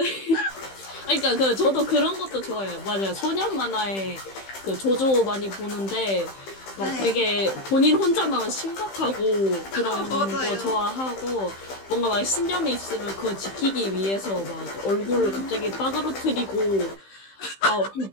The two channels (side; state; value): right; late; 15 ms